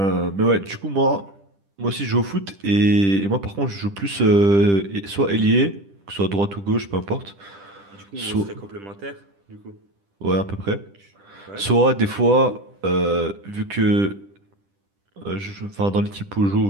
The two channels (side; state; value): left; late; 10 ms